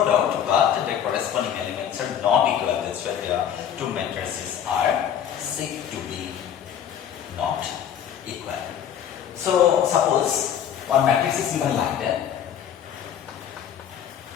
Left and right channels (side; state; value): right; quieter; 9.1 dB